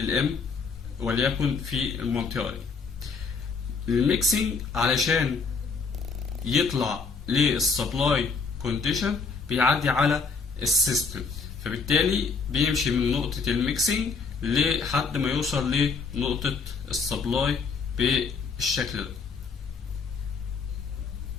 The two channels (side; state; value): right; quieter; 4.9 dB